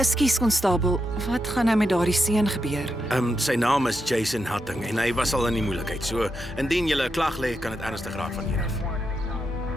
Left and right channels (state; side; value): normal; both; correlation 0.85